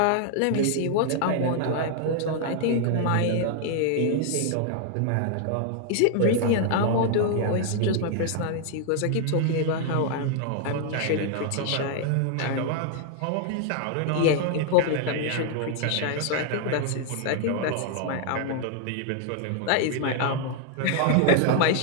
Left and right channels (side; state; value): both; different; correlation 0.00